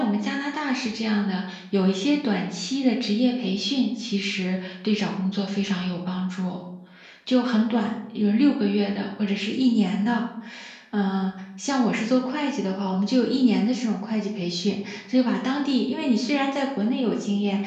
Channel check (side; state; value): both; identical; correlation 1.00